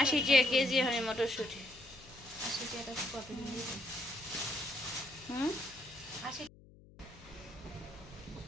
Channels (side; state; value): left; noise; hum, 22 dB below the sound